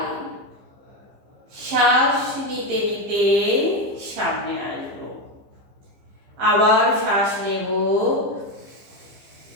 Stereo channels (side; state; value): left; late; 15 ms